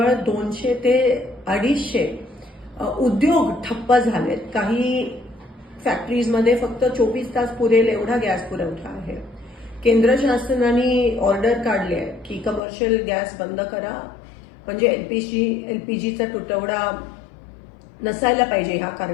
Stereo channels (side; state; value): right; drops out; at 12.6 s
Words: 200 ते 250 उद्योग ठप्प झालेत. काही फॅक्टरीजमध्ये फक्त 24 तास पुरेल एवढा गॅस पुरवठा आहे. केंद्र शासनाने ऑर्डर काढली आहे की कमर्शियल गॅस बंद करा, म्हणजे एलपीजीचा तुटवडा नसायला पाहिजे ह्या